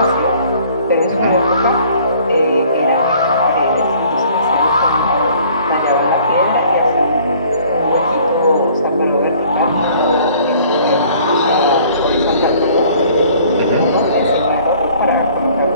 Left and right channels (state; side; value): inverted; both; correlation -0.55